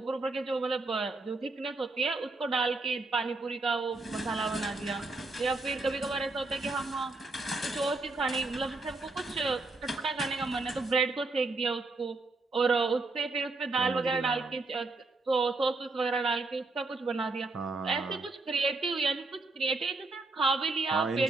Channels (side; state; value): left; quieter; 3.4 dB